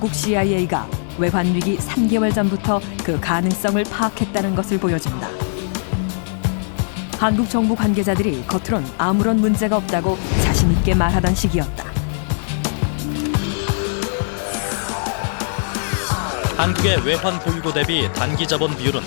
CIA가 외환 위기 3개월 전부터 그 가능성을 파악했다는 것을 보여준다. 한국 정부 관계자들이 겉으론 아무런 문제가 없다고 자신 있게 말하던 시기였다. 한국의 외환 보유고 대비 단기 자본 비율은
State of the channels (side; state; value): right; silent; digital silence